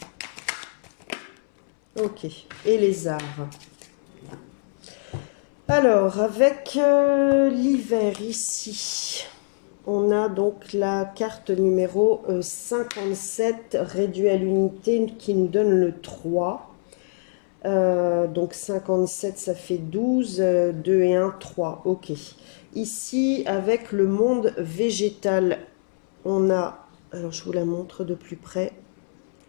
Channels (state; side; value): silent; right; 63 dB below the other